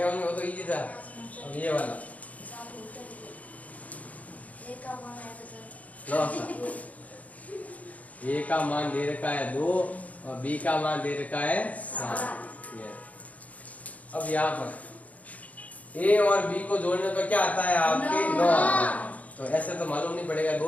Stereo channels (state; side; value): late; right; 0.071 ms